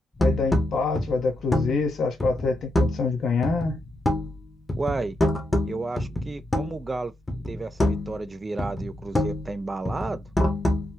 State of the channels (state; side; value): normal; both; correlation 0.84